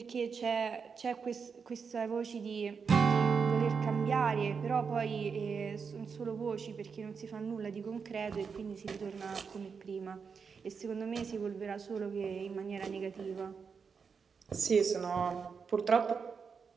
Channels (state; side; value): quieter; left; 5.8 dB